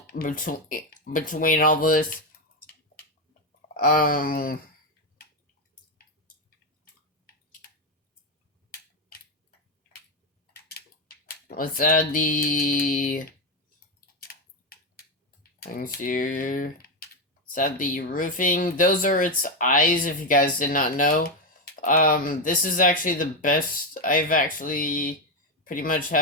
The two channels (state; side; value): normal; both; correlation 0.08